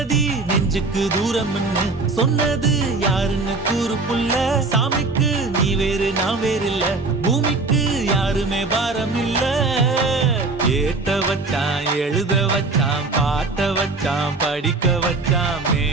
நெஞ்சுக்கு தூரம்னு சொன்னது யாருன்னு கூறு புள்ள சாமிக்கு நீ வேறு நான் வேறு இல்ல பூமிக்கு யாருமே பாரம் இல்ல ஏத்த வச்சான் எழுத வச்சான் பாட்ட வச்சான் படிக்க வச்சான்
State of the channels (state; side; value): quieter; left; 3.6 dB